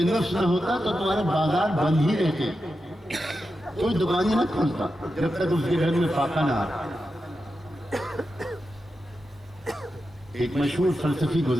نفس نہ ہوتا تو تمہارے بازار بند ہی رہتے، کوئی دکان ہی نہ کھولتا جب تک اس کے گھر میں فاقہ نہ آتا۔ ایک مشہور فلسفی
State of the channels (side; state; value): both; normal; correlation 0.89